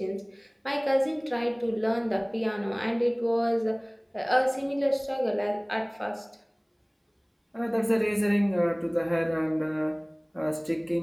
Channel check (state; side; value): identical; both; correlation 1.00